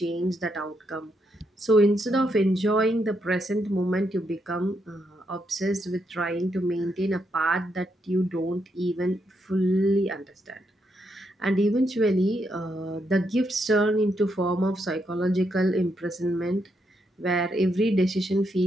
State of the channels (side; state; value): both; normal; correlation 0.79